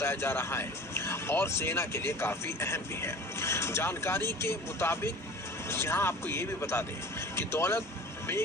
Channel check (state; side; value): normal; both; correlation 0.41